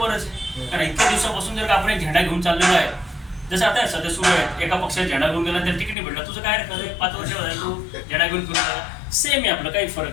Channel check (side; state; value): right; drops out; at 6.0 s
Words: आहे. कारण इतक्या दिवसापासून जर का आपण एक झेंडा घेऊन चाललेलो आहे, जसं आता सध्या सुरू आहे, एका पक्षात झेंडा घेऊन गेला त्याला तिकीट नाही भेटला, तुझं काय रे 5 वर्ष तू झेंडा घेऊन फिरून आला. सेम आहे आपलं, काही